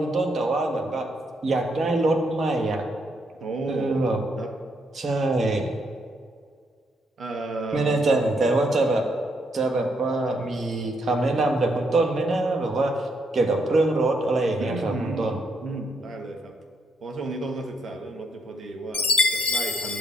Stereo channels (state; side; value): normal; both; correlation 0.75